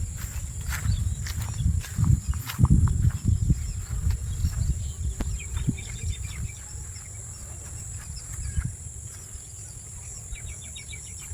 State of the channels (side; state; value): both; identical; correlation 1.00